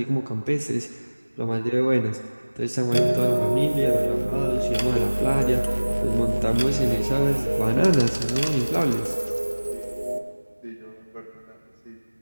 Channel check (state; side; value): inverted; both; correlation -1.00